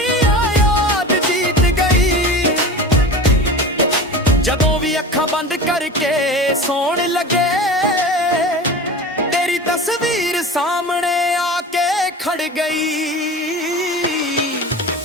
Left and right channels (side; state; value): both; normal; correlation 0.32